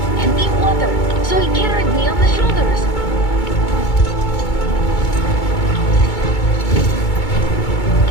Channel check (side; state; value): right; late; 2.2 ms